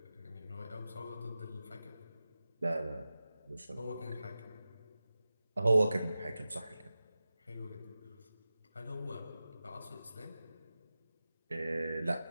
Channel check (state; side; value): inverted; both; correlation -0.94